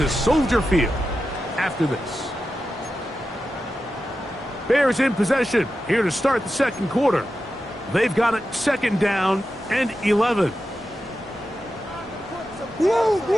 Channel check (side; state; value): both; normal; correlation 0.91